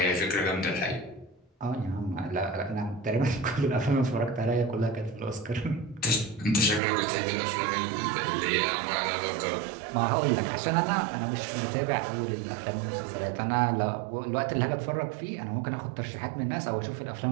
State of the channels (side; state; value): left; drops out; at 6.8 s